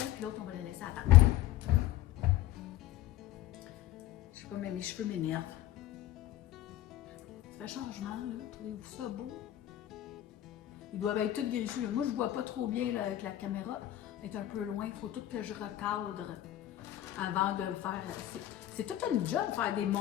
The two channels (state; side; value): quieter; right; 13.4 dB